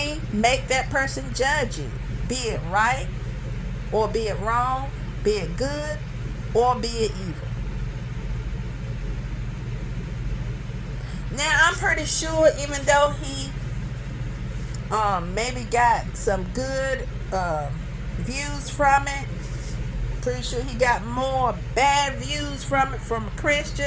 make that person judge you, be it right or be it wrong, be it good or be it evil. Now, I'm pretty sure even though he maybe got some good views from it, pretty sure he got more bad views from it from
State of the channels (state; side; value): identical; both; correlation 1.00